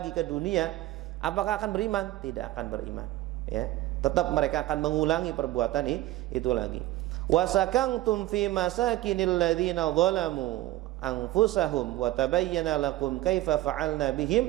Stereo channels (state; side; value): quieter; left; 16.2 dB